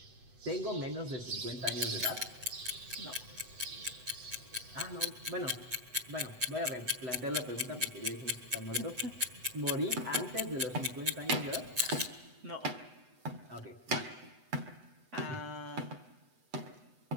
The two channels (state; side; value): late; left; 8.0 ms